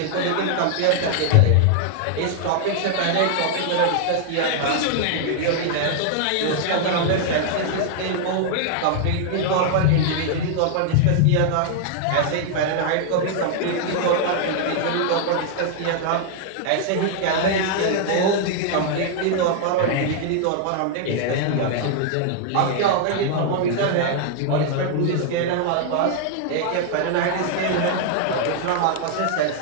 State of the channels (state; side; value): different; both; correlation 0.00